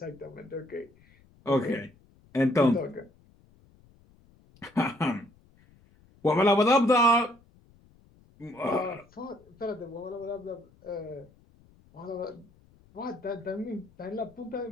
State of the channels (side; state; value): left; noise; rumble, 29 dB below the sound